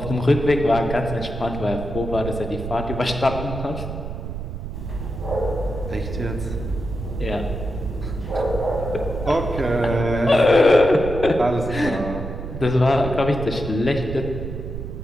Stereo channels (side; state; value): right; noise; rumble, 7 dB below the sound